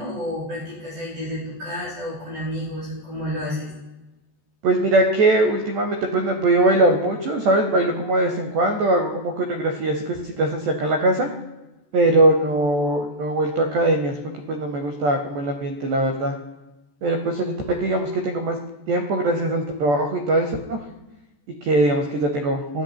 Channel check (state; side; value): late; left; 14 ms